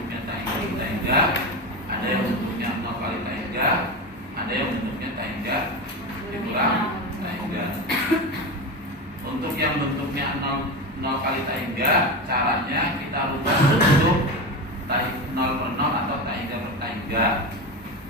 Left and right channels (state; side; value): normal; both; correlation 0.21